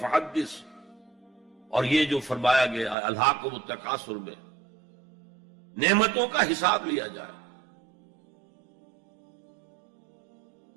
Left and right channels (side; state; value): left; drops out; at 3.0 s